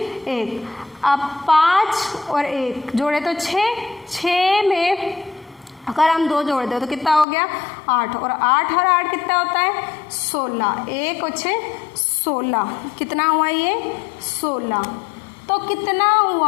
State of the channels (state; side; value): drops out; right; at 7.2 s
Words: 1। अब 5 और 1 जोड़े तो 6, 6 में अगर हम 2 जोड़ दें तो कितना हो गया, 8, और 8 और 8 कितना होता है, 16, 1 और 6 16, कितना हुआ ये, 16। तो कितना